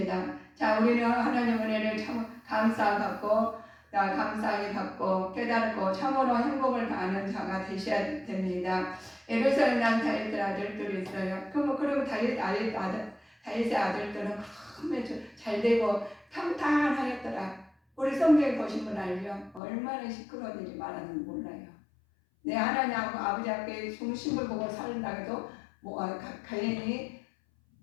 자, 우리는 하나님 은혜를 참 감사히 받고 깨닫고 참으로 행복을 아는 자가 되셔야 됩니다. 예루살렘 난 다윗의 아들들이 있어요. 그럼 다윗의 아들들은 잘 되고 평탄하였더라. 우리 성경에 보신 분 알죠? 얼마나 시끄러운 일이 많았는지 몰라요. 내 하나님 아버지 앞에 중심을 보고 살다 해도 괜히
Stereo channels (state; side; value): drops out; right; at 19.6 s